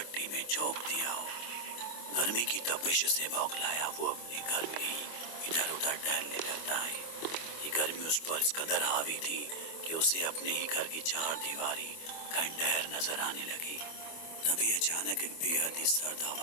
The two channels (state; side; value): late; right; 24 ms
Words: میں جھونک دیا ہو۔ گرمی کی تپش سے بوکھلایا وہ اپنے گھر میں ہی ادھر ادھر ٹہلنے لگتا ہے۔ یہ گرمی اس پر اس قدر حاوی تھی کہ اسے اپنے ہی گھر کی 4 دیواری کھنڈہر نظر آنے لگی۔ تبھی اچانک ایک بے حد ہی سرد